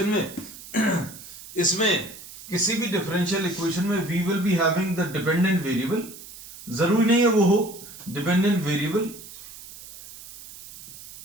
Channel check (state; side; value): noise; right; hiss, 16 dB below the sound